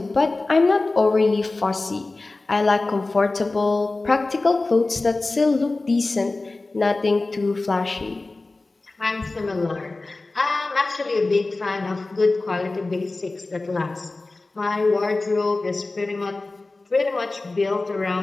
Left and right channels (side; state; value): right; quieter; 3.3 dB